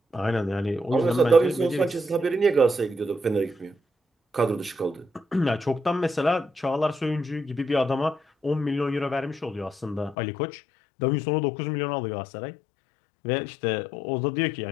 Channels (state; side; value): drops out; right; at 10.2 s